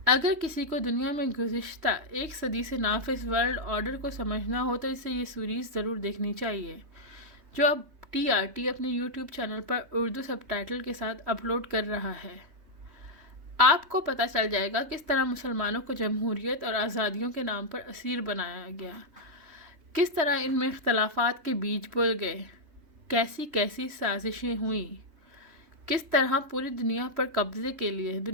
اگر کسی کو دنیا میں گزشتہ ایک صدی سے نافذ ورلڈ آرڈر کو سمجھنا ہو تو اسے یہ سیریز ضرور دیکھنی چاہیے جو اب TRT اپنے یوٹیوب چینل پر اردو سب ٹائٹل کے ساتھ اپلوڈ کر رہا ہے. آپ کو پتہ چل جائے گا کس طرح مسلمانوں کو جمہوریت اور آزادیوں کے نام پر اسیر بنایا گیا، کس طرح ان میں اختلافات کے بیج بول گئے، کیسی کیسی سازشیں ہوئیں، کس طرح پوری دنیا پر قبضے کے لیے،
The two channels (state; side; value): late; left; 3.1 ms